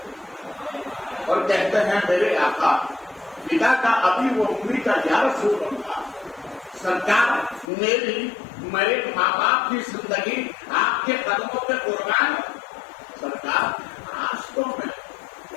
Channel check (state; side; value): drops out; right; at 7.7 s